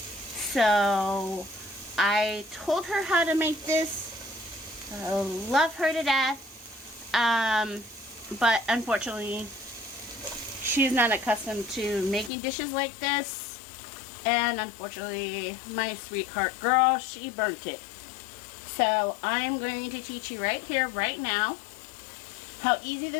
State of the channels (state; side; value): drops out; right; at 12.3 s